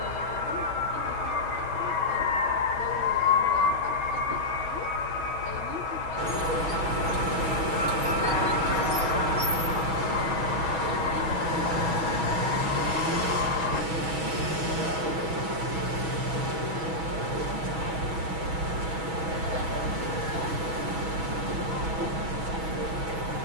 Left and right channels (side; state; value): left; late; 6.2 ms